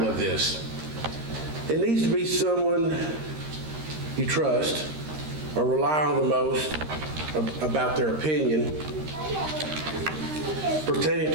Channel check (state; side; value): late; left; 13 ms